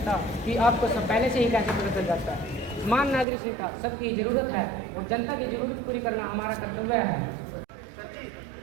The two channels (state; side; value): drops out; left; at 3.2 s